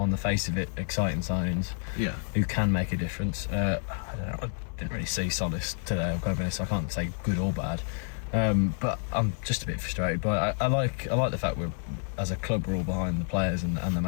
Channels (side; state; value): right; silent; 59 dB below the other